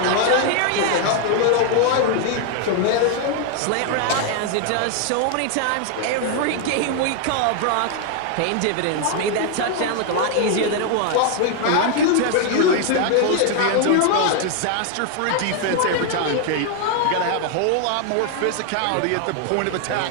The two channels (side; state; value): both; different; correlation 0.00